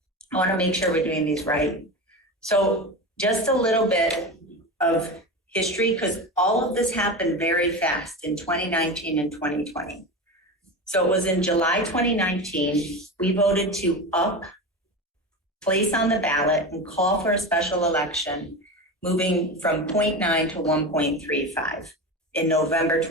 I want to make sure we're doing these right. So just a little bit of history, because all of this happened very fast in 2019 and 2020. So it was in July 2019, we voted to place on the ballot and call for a special election, moving from 0.9 to 1.35 in November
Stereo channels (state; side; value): normal; both; correlation 0.24